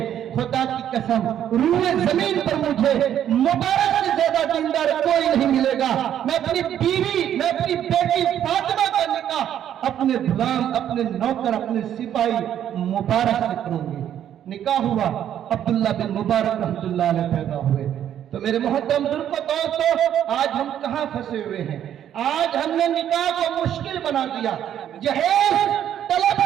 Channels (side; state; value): left; quieter; 10.3 dB